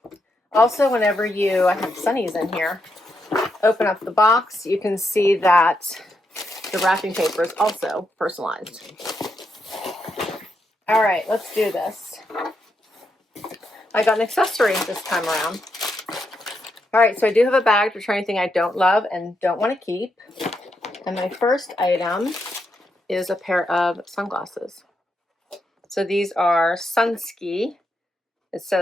Also, whenever I have Sunnies in here, open up the box, you can see that the wrapping paper is also personalized. All right, let's do this. I got an accessory this time around. All right, so I do have a bag to try anything I don't love and don't want to keep. And my first item is a pair of sunglasses. So these are Sunski. It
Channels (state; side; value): normal; both; correlation 0.82